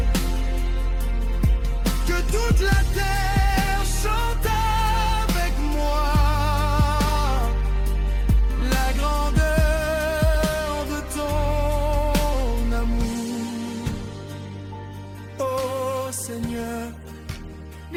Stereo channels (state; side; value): identical; both; correlation 1.00